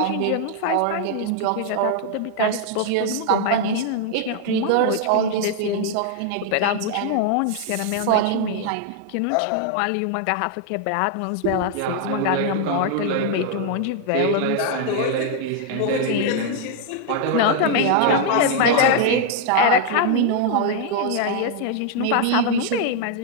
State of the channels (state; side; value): different; both; correlation 0.00